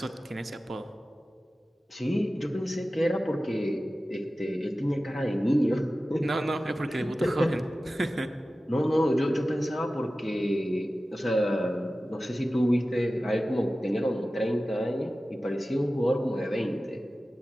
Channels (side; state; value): both; normal; correlation 0.95